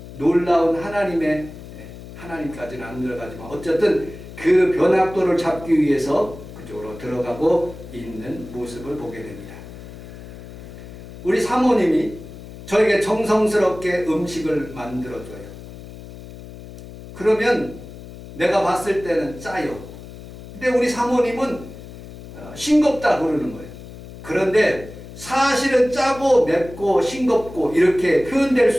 놀라운 하나님까지는 안 들어가지만 어쨌든 그 변학도를 잡기 위해서 그쪽으로 들어가고 있는 모습을 보게 됩니다. 우리 사모님이 저에게 정성스럽게 음식을 만들어줘요. 그러면 내가 봤을 때는 짜요. 근데 우리 사모님은 싱겁다 그러는 거예요. 그런데 사실은 짜고 맵고 싱겁고 이렇게 표현될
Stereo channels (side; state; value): left; noise; hum, 15 dB below the sound